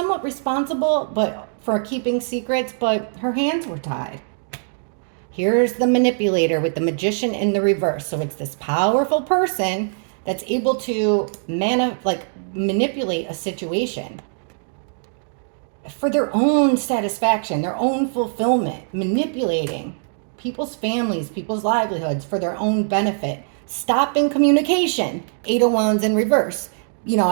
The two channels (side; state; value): left; silent; digital silence